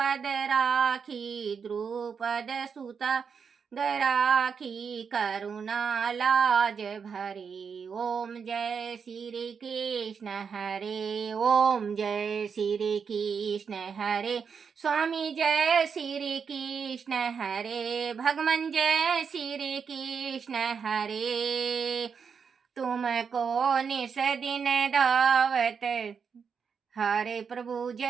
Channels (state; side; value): quieter; left; 6.3 dB